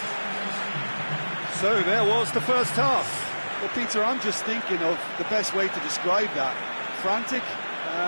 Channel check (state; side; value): inverted; both; correlation -1.00